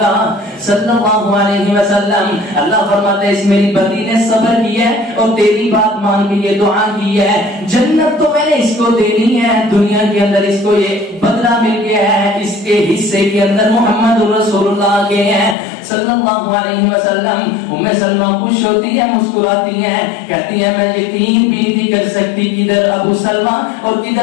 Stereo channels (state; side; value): drops out; right; at 15.6 s